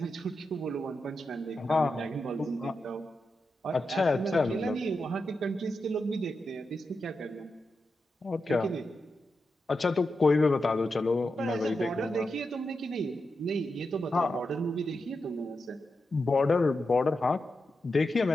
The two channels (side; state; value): both; normal; correlation 0.88